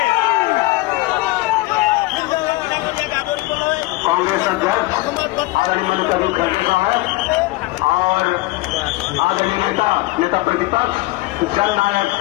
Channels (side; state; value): right; quieter; 20.6 dB